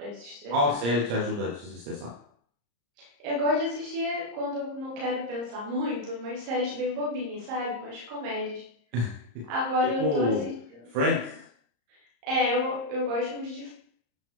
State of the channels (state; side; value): late; left; 34 ms